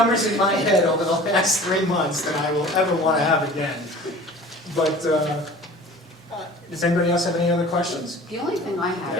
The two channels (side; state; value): both; normal; correlation 0.43